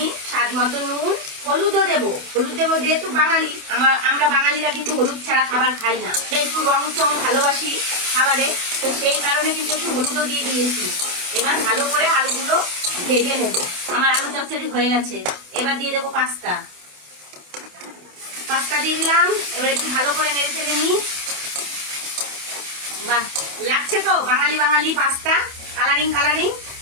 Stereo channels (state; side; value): late; left; 28 ms